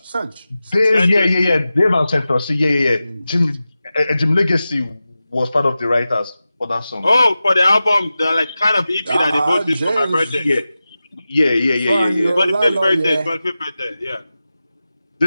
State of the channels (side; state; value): both; inverted; correlation -0.94